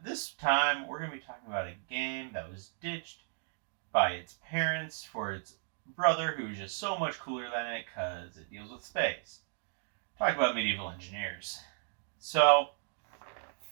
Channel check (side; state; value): left; silent; 55 dB below the other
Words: this time we're going to be talking about a game that was ditched by its parents for its brother, who's just so much cooler than it because it deals with space. Talk about Medieval Engineers. So,